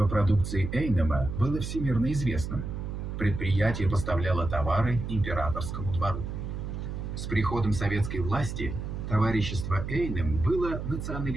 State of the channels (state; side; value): noise; right; hum, 6 dB below the sound